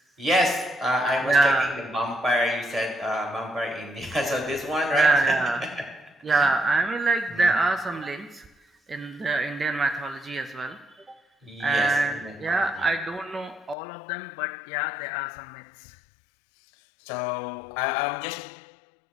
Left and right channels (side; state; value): right; drops out; at 13.8 s